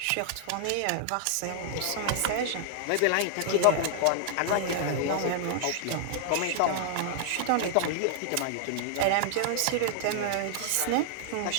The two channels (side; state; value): both; different; correlation -0.01